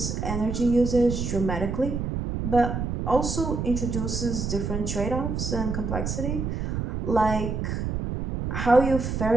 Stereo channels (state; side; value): noise; right; rumble, 2 dB below the sound